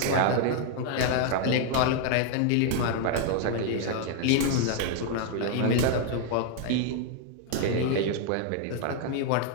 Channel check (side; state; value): both; different; correlation 0.00